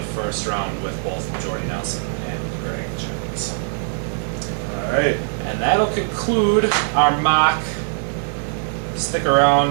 first round with both Jordy Nelson and Greg Jennings. All right. And that'll conclude our mock. Stick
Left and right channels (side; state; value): left; silent; digital silence